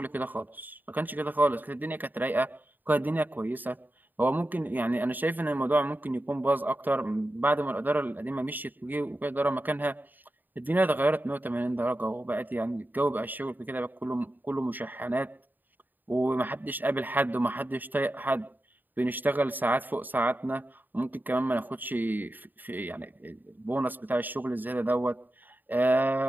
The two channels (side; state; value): left; late; 0.089 ms